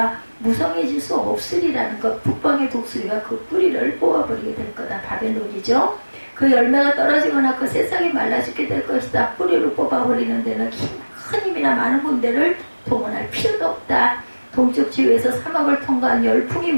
무성해질 수 없으리라는 것, 북방의 독수리가 그 뿌리를 뽑아버리게 될 거다. 바벨론이죠. 그 열매가 떨어지거나 그 새싹이 말라 죽게 될 것이다. 뿌리를 뽑아버리는 데는 큰 힘이나 많은 군대를 동원할 필요도 없다. 동쪽 지구에서 사막을 통과한 열풍이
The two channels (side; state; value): both; inverted; correlation -1.00